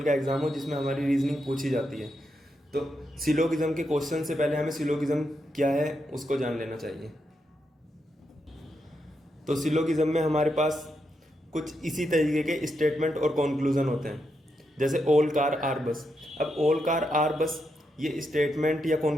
का एग्जाम हो जिसमें हमारी रीजनिंग पूछी जाती है। तो सिलोगिज्म के क्वेश्चन से पहले हमें सिलोगिज्म क्या है उसको जान लेना चाहिए। तो सिलोगिज्म में हमारे पास कुछ इसी तरीके के स्टेटमेंट और कंक्लूजन होते हैं, जैसे ऑल कार आर बस। अब ऑल कार आर बस ये स्टेटमेंट या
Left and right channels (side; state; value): both; normal; correlation 0.83